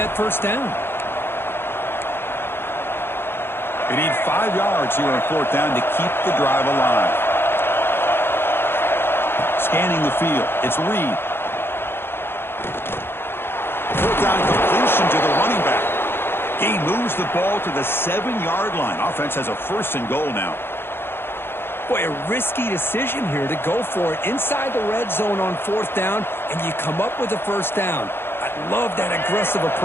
first down. They need 5 yards here on fourth down to keep the drive alive. Scanning the field. It's Reed. Fourth down completion to the running back. He moves the ball to the 7-yard line. Offense has a first and goal now. Boy, a risky decision here to go for it inside the red zone on fourth down, and you come up with a first down. I love that aggressive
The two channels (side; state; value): right; late; 0.11 ms